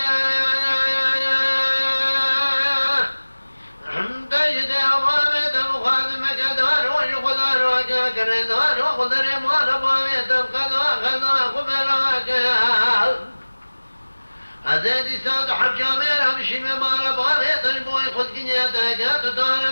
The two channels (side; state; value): both; inverted; correlation -1.00